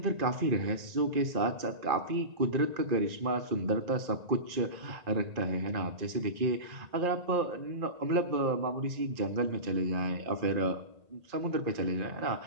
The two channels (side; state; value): left; late; 2.4 ms